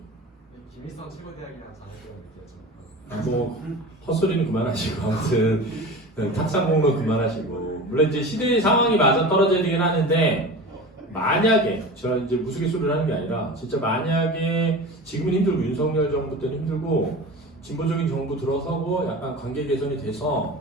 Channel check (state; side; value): normal; both; correlation 0.33